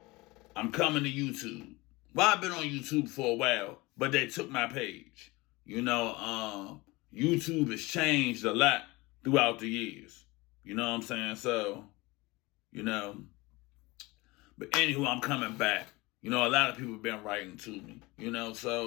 I'm coming to YouTube. Well, I've been on YouTube for a while, but they took my page. YouTube has changed a lot throughout the years. You know what I'm saying? So, you know, but anywho, I'm coming back. A lot of people have been writing to me,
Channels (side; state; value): right; quieter; 22.2 dB